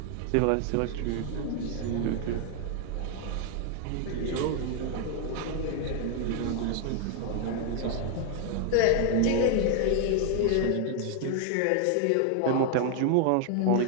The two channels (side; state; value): both; different; correlation 0.00